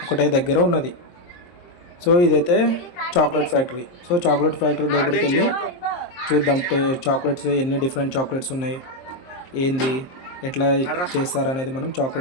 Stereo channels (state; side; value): late; right; 23 ms